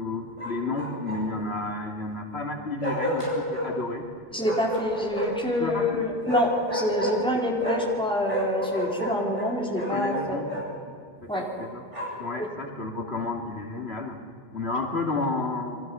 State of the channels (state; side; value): normal; both; correlation 0.25